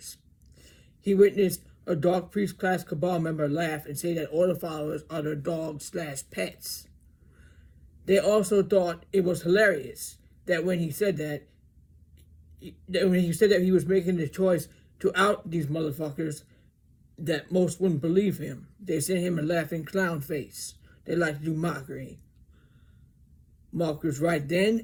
He witnessed a Dark Priest class cabal member laugh and say that order followers are their dogs/pets. They also thought it was hilarious that when he said that he was making the choice to out these motherfuckers, that most wouldn't believe him. They sent him a laughing clown face. They like to do mockery. Mark was right then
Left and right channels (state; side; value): identical; both; correlation 1.00